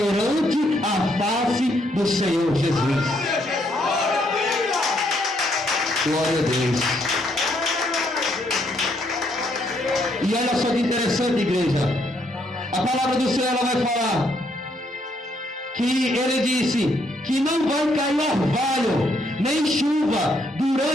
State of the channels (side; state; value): both; normal; correlation 0.72